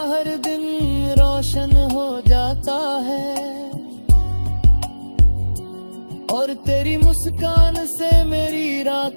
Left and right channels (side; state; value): both; inverted; correlation -1.00